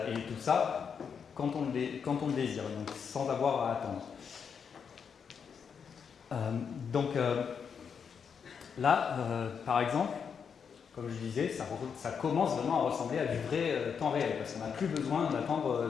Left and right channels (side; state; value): right; quieter; 6.7 dB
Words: tout ça quand on le désire, donc sans avoir à attendre. Là, par exemple, comme je disais, ça commence vraiment à ressembler à du vrai temps réel, parce qu'on n'a plus besoin d'attendre